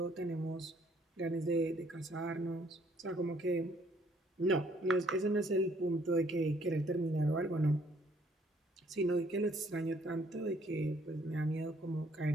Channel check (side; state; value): both; normal; correlation 0.64